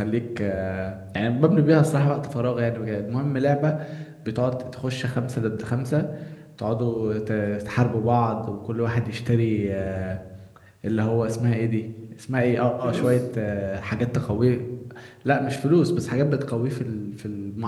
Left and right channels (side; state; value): both; identical; correlation 1.00